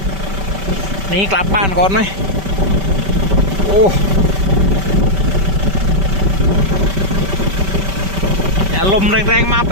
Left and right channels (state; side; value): late; left; 5.2 ms